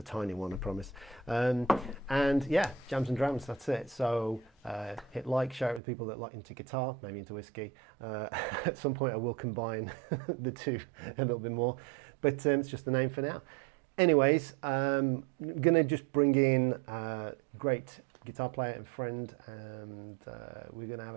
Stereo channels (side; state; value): left; drops out; at 5.8 s